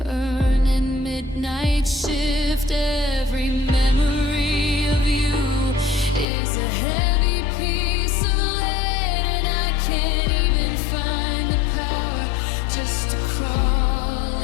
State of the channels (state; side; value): drops out; right; at 6.2 s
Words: burning midnight shift. Every memory of you is a heavy piece of lead, and I can't even find the power just to crawl